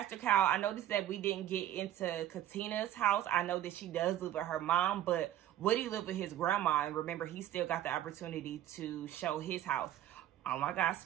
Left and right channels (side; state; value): left; quieter; 12.3 dB